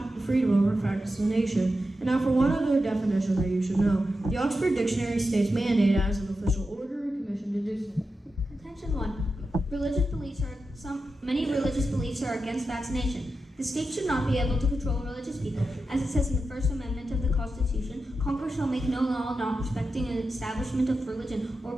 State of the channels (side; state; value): both; normal; correlation 0.90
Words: the freedom over vaccination. And now for one other definition that you should know. The Oxford Dictionary states mandate as an official order or commission to do so. Contention 1. Many religious beliefs are against vaccination. The state should not be able to control religious people. As it says in the First Amendment of the Constitution, Congress shall make no law not respecting an establishment of religion or